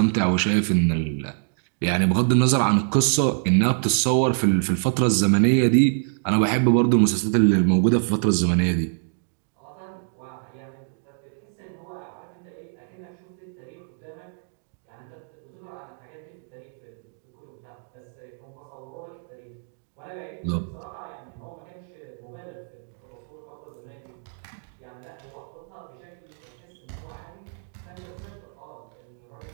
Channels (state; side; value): silent; left; digital silence